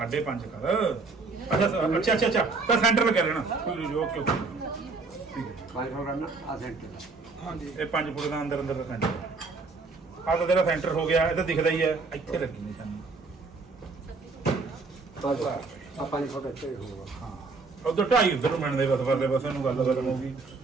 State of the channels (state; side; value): quieter; left; 4.1 dB